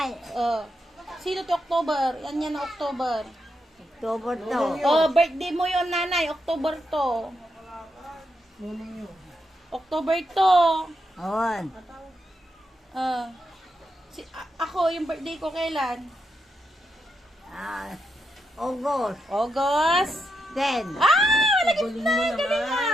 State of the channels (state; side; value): normal; both; correlation 0.83